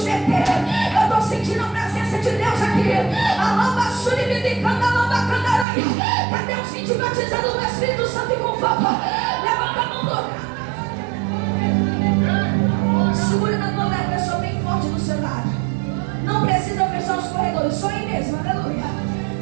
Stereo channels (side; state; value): left; drops out; at 5.7 s